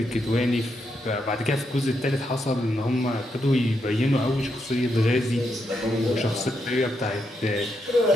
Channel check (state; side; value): normal; both; correlation 0.81